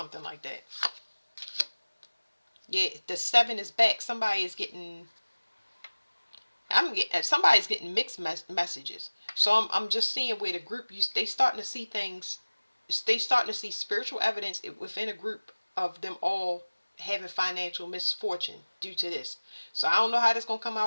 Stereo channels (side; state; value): both; inverted; correlation -1.00